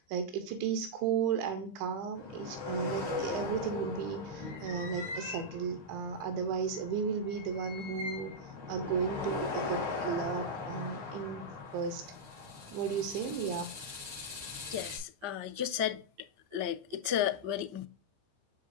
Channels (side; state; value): left; late; 15 ms